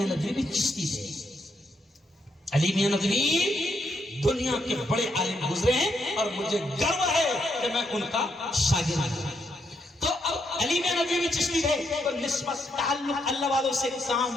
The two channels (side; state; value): both; normal; correlation 0.78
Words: ندوی بھی چشتی تھے۔ علی میاں ندوی دنیا کے بڑے عالم گزرے ہیں اور مجھے گرو ہے کہ میں ان کا شاگرد ہوں۔ تو علی میاں ندوی چشتی تھے تو نسبت تعلق اللہ والوں سے کام